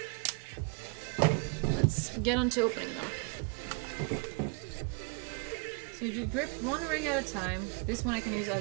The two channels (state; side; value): quieter; left; 33.3 dB